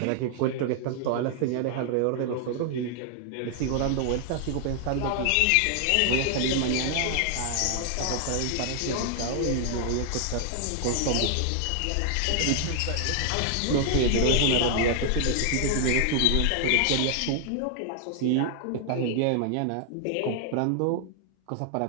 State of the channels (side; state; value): both; different; correlation 0.00